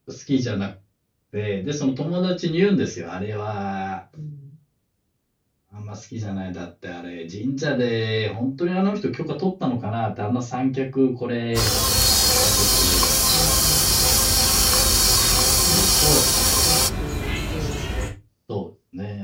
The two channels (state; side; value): identical; both; correlation 1.00